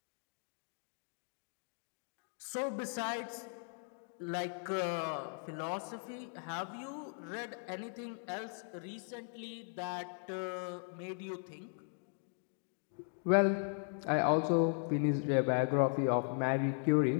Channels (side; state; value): right; silent; 52 dB below the other